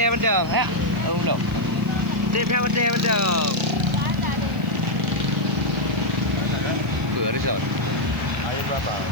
Ya. Belum. Tip dia betul. Resort. Ayo berapa?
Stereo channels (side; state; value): left; noise; hiss, 26 dB below the sound